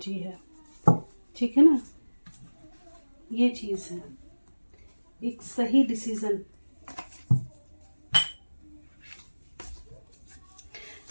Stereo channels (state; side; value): inverted; both; correlation -1.00